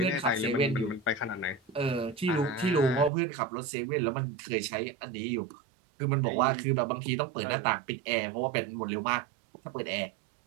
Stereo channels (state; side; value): drops out; left; at 3.1 s